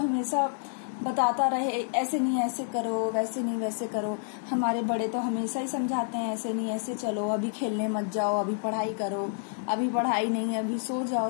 बताता रहे ऐसे नहीं ऐसे करो, वैसे नहीं वैसे करो? हमारे बड़े तो हमेशा ही समझाते हैं ऐसे नहीं ऐसे चलो, अभी खेलने मत जाओ, अभी पढ़ाई करो, अभी पढ़ाई नहीं, अभी सो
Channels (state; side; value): silent; right; digital silence